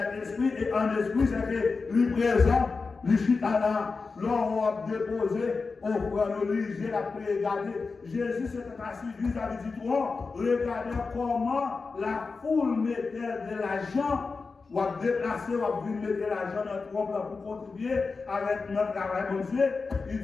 esprit, et en esprit, c'est que lui présent, lui chita là, l'on a déposé, on prend le lit, la regarder. Jésus s'était assis vis-à-vis du trône, regardez comment la foule mettait de l'argent, ou a déplacé, ou a venir mettre l'argent dans le trône pour contribuer avec notre travail, mon Dieu. Il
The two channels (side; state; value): right; quieter; 4.4 dB